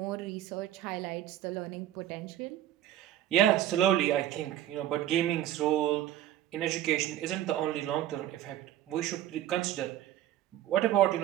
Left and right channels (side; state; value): left; quieter; 12.4 dB